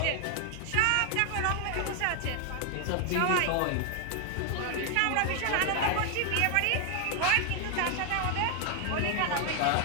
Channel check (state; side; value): different; both; correlation 0.00